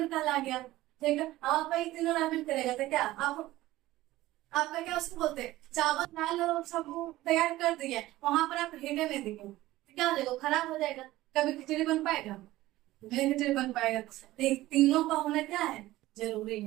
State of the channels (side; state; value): left; quieter; 16.7 dB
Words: कहला गया, ठीक है। आप तीनों रामेन करेगा तो क्या आपका क्या उसको बोलते हैं, चावल दाल सब तैयार कर दिए, वहां पर आप हीटे नहीं दिए तो क्या हो जाएगा, खराब हो जाएगा, कभी खिचड़ी बन पाएगा, नहीं खिचड़ी बन पाएगा। तीनों का होना क्या है, जरूरी